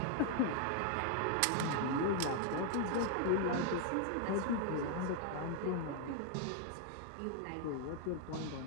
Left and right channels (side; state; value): both; different; correlation 0.00